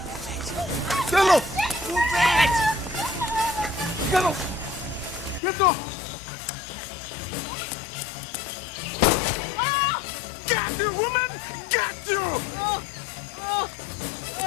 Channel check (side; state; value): right; drops out; at 5.4 s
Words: Get up! Move it! Get up! Get up! Get you, woman! Get you!